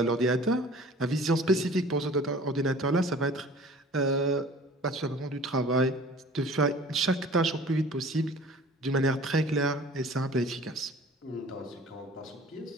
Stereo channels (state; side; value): normal; both; correlation 0.46